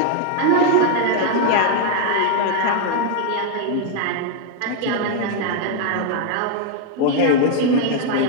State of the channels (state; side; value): different; both; correlation 0.00